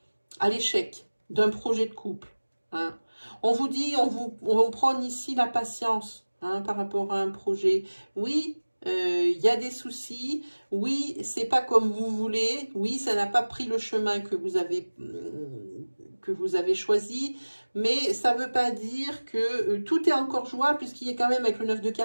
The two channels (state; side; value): inverted; both; correlation -1.00